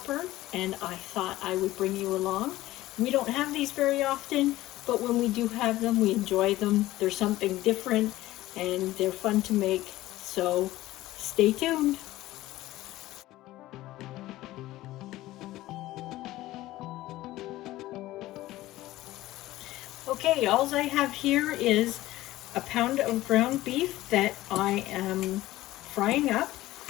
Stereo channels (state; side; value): quieter; right; 16.4 dB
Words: and I thought I would bring you along. We don't have these very often, but when we do have them, we enjoy them. They're something different and they're fun to make, so stay tuned. Okay, all I have here is a pound of ground beef that I am frying up.